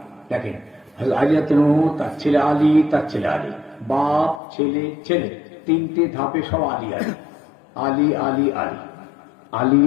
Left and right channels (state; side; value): drops out; right; at 4.4 s